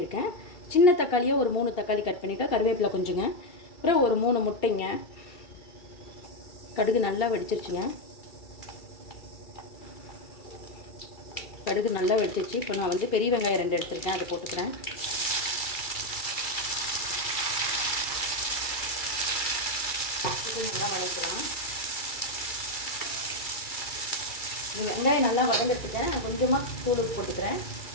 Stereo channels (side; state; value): right; late; 2.3 ms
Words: சின்ன தக்காளியாக ஒரு 3 தக்காளி கட் பண்ணியிருக்கேன். கருவேப்பிலை கொஞ்சங்க, அப்புறம் ஒரு 3 முட்டைங்க. கடுகு நல்லா வெடிச்சிருச்சுங்க. கடுகு நல்லா வெடிச்சிச்சு. இப்போ நான் வந்து பெரிய வெங்காயம் 2 எடுத்துருக்கேன், அதை போட்டுக்கிறேன். நல்லா வதக்கலாம். இந்த வெங்காயம் நல்லா வதங்கிட்டுருக்கேன். நான் கொஞ்சமாக தூள் போட்டுக்கிறேன்.